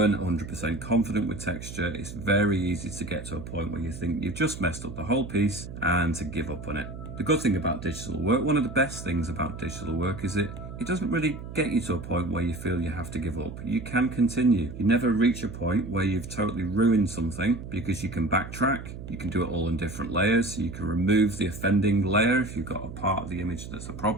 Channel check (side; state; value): right; noise; hum, 10 dB below the sound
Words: 100% confident with texture, it's very easy to get to a point where you think you've just messed up the whole piece and to give up on it. The good thing about digital work, one of the best things about digital work is it doesn't really get you to a point where you feel you have to give up. You can continue. You never reach a point where you've totally ruined something because you can backtrack. You can do it all in different layers. So you can remove the offending layer if you've got a part of the image that's a